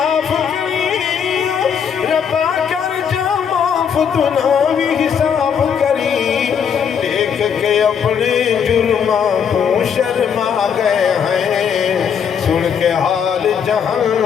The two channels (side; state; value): right; quieter; 7.4 dB